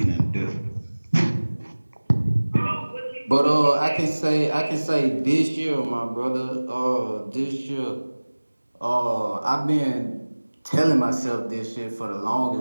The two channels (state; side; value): inverted; both; correlation -1.00